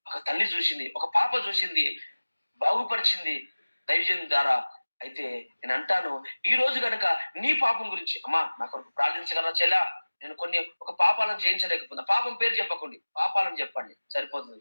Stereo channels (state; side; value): inverted; both; correlation -1.00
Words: ఒక తల్లి చూసింది, ఒక పాప చూసింది, బాగుపరిచింది దైవజన్ ద్వారా. అయితే నేను అంటాను, ఈ రోజు కనుక నీ పాపం గురించి, అమ్మా నా కొరకు ప్రార్థించగలరా చెల్లా, నేను ఒక పాపాలను జయించలేకపోతున్నా, పాపం పేరు చెప్పకండి, పాపాలను చెప్పండి సరిపోతుంది.